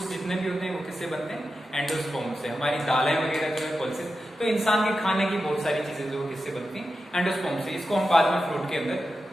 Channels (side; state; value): both; normal; correlation 0.91